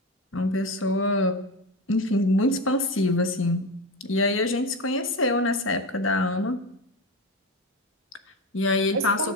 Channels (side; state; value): both; normal; correlation 0.20